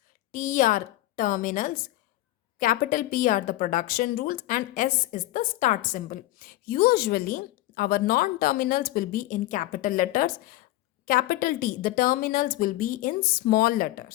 T are terminals, capital P are the production rules, and S is the start symbol. Usually our non-terminals will be in capital letters. Capital T, the terminals will be in small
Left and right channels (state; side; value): quieter; right; 16.6 dB